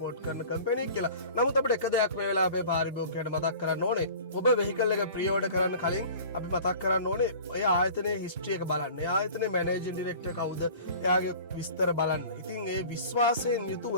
කරන කම්පැනියක් කියලා. නමුත් අපිට එක දෙයක් මේ වෙලාවේ අපේ පාරිභෝගිකයන්ට මතක් කරන්න ඕනේ. ඔබ වෙහිකල් එක ප්‍රී ඕඩර් කරන්න කලින් අපි මතක් කරන්න ඕනේ ඔය ආයතනයේ හිස්ටරි එක බලන්න. ඒ ආයතනයේ මැනේජින් ඩිරෙක්ටර් කවුද? එයාගේ විස්තර බලන්න. ඉතින් ඒ විශ්වාසයෙන් යුතුව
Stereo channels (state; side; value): inverted; both; correlation -0.43